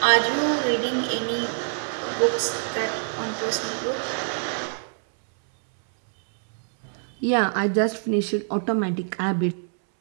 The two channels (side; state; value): left; silent; 62 dB below the other